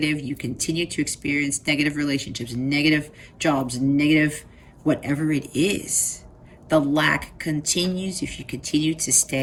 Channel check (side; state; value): both; identical; correlation 1.00